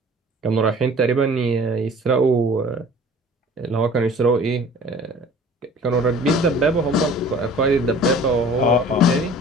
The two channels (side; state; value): both; normal; correlation 0.47